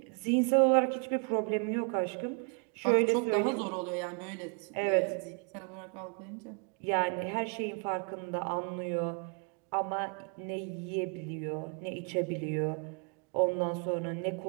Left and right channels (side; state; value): left; quieter; 38.2 dB